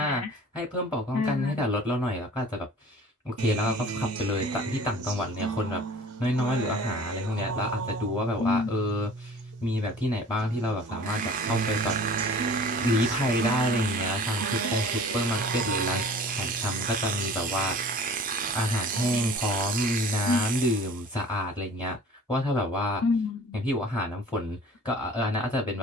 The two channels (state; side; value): normal; both; correlation 0.45